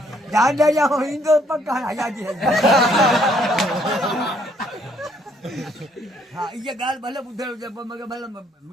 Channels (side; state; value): both; normal; correlation 0.67